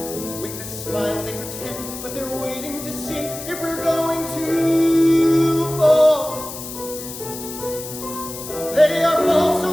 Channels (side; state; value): left; noise; hiss, 10 dB below the sound